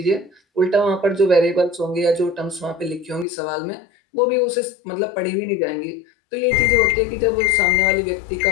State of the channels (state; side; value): drops out; right; at 3.2 s